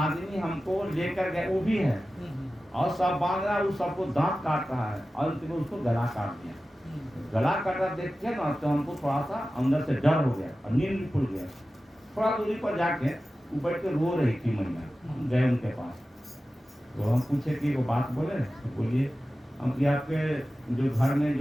हमको लेकर गए वो भी है, और सब बांध रहा है, वो सबको दांत काट रहा है, और अंत में उसको गला काट दिया। गला काटा देख के ना तो हमको थोड़ा सा अंदर से डर हो गया और नींद भी खुल गया। थोड़ा दूरी पर जाके वो बैठ के रो रही थी महिला, गए उनके पास। तो हम पूछे कि वो बात बोले, तो बोलिए हम कि आपके जो घर में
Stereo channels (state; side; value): normal; both; correlation 0.94